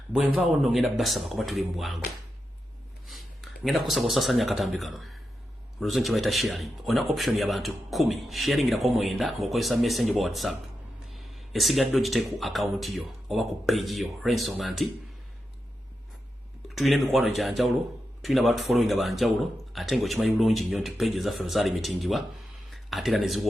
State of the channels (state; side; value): normal; both; correlation 0.88